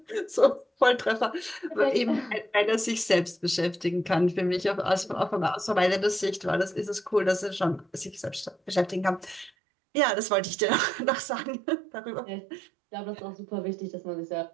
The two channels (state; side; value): drops out; left; at 9.5 s